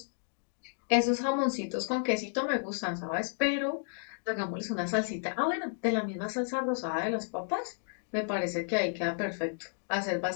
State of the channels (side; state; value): right; silent; digital silence